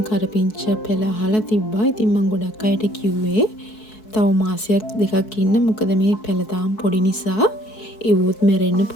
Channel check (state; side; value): late; right; 4.6 ms